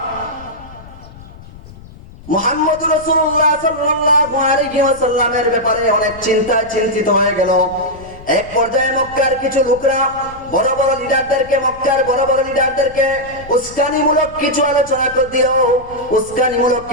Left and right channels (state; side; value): noise; left; rumble, 19 dB below the sound